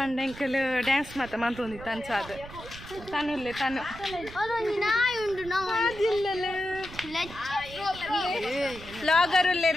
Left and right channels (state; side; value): noise; right; rumble, 15 dB below the sound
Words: ಎಂಕಲ್ ಡ್ಯಾನ್ಸ್ ಮಾತ ಮಂತೊಂದಿತ್ತು ಅಂಚ ಅದು ತನುಲ್ಲೆ ತನು ಲಾಗರ್